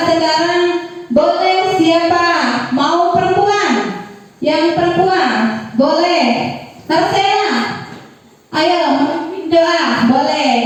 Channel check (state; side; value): identical; both; correlation 1.00